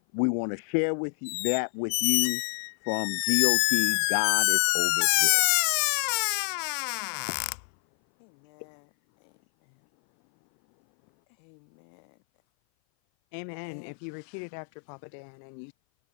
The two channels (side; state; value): right; silent; 58 dB below the other